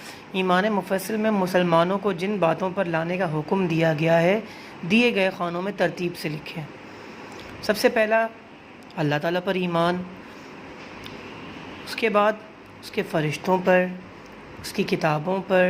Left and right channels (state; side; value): identical; both; correlation 1.00